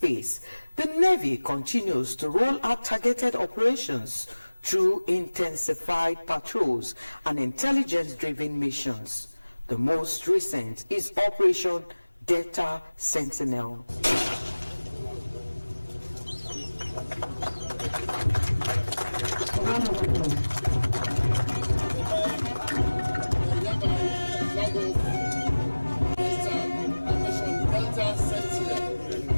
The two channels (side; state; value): both; inverted; correlation -1.00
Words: the Navy continues to roll out targeted operations through intensified patrols and intelligence-driven missions. The most recent is Operation Delta Sentinel.